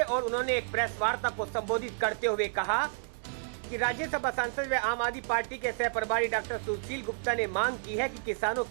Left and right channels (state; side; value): silent; left; digital silence